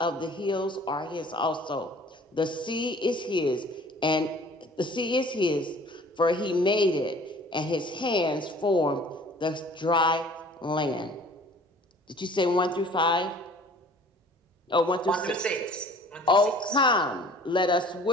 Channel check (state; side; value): normal; both; correlation 0.50